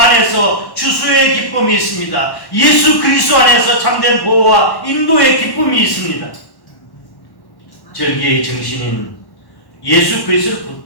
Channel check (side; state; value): right; late; 1.1 ms